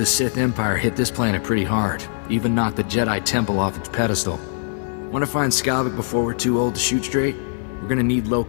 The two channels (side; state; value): right; silent; digital silence